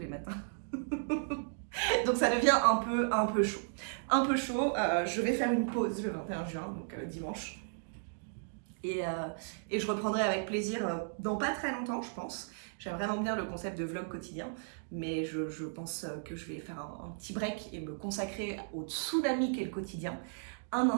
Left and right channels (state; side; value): silent; left; digital silence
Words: matins. Donc ça devient un peu chaud. Un peu chaud. Je vais faire une pause le 21 juin, donc dimanche. Et je reprendrai avec plaisir dans pas très longtemps, je pense. J'aime vraiment bien le concept de vlog quotidien, mais je pense que je vais faire un petit break et me consacrer au tsunami qu'est le quotidien un